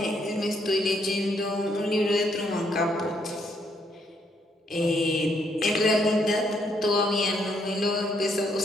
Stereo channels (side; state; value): both; normal; correlation 0.73